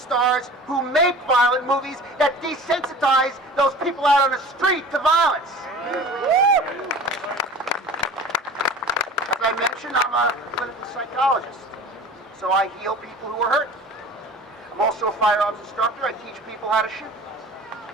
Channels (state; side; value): normal; both; correlation 0.41